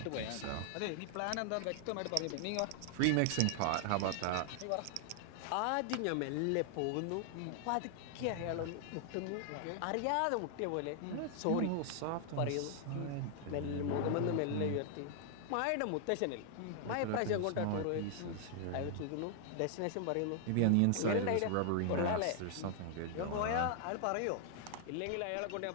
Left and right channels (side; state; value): both; different; correlation 0.00